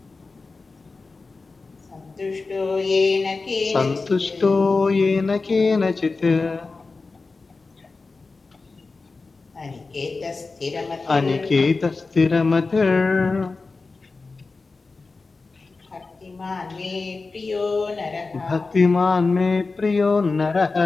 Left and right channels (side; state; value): right; quieter; 3.9 dB